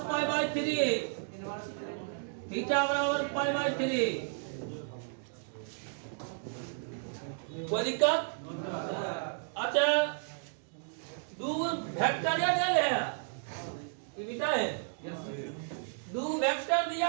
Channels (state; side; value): silent; left; digital silence